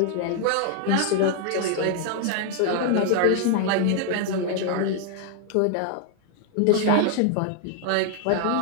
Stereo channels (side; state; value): both; different; correlation 0.00